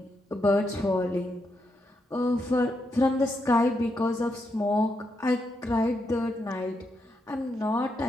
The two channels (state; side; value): normal; both; correlation 0.82